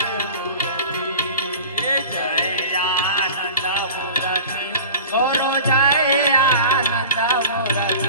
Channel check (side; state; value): both; inverted; correlation -0.39